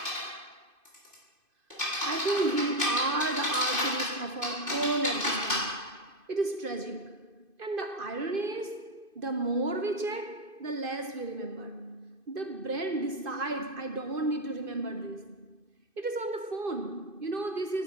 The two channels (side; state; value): left; late; 2.5 ms